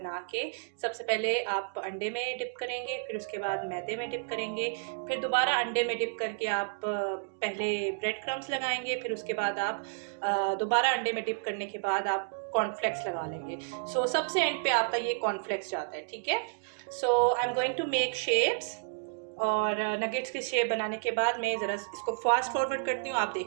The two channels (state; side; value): silent; left; digital silence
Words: के, सबसे पहले आप अंडे में डिप करेंगे, फिर उसके बाद मैदे में डिप करेंगे, फिर दोबारा अंडे में डिप करके आप पहले ब्रेड क्रम्स लगाएंगे, फिर उसके बाद आप दोबारा अंडे में डिप करने के बाद आप कॉर्नफ्लेक्स लगा लेंगे। सो सबसे एंड पे आपका ये कॉर्नफ्लेक्स जाता है, ठीक है। So I am going to make shapes, और नगेट्स की शेप बनाने के बाद मैं ज़रा इसको फास्ट फॉरवर्ड करती हूँ, आप